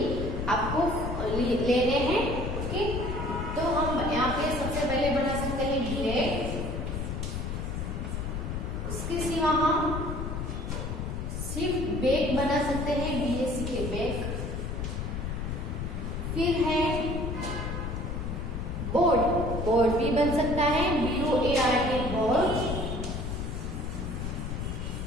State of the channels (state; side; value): noise; left; rumble, 3 dB below the sound